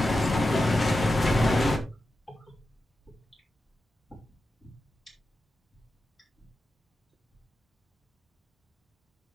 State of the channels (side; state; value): both; normal; correlation 0.91